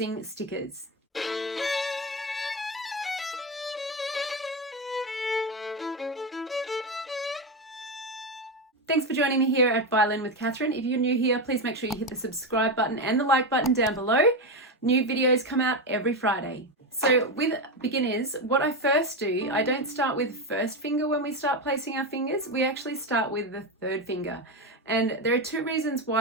stickers. Thanks for joining me here at Violin with Catherine. If you're new here, please make sure you hit the subscribe button and the like button down below. New videos come out every Friday. So with beginners, what I first do, I don't start with first finger when we start placing our fingers. We actually start with the third finger. And there are two reasons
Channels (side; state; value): both; normal; correlation 0.13